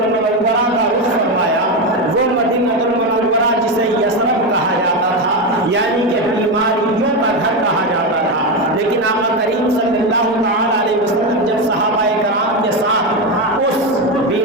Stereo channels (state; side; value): normal; both; correlation 0.12